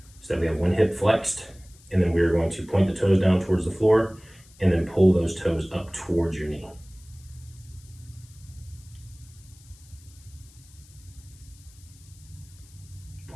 so that we have one hip flexed, and then we're going to point the toes down towards the floor and then pull those toes up towards your knee.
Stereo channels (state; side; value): noise; left; hiss, 25 dB below the sound